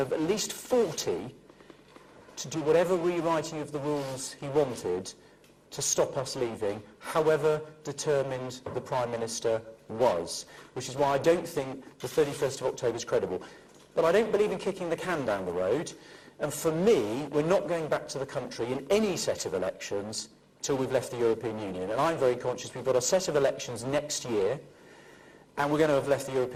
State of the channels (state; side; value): identical; both; correlation 1.00